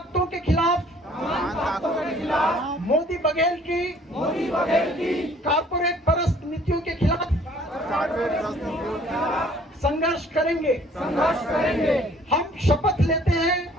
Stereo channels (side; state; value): both; normal; correlation 0.56